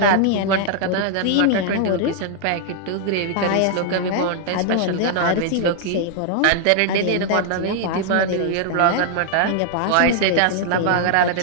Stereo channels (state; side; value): different; both; correlation -0.01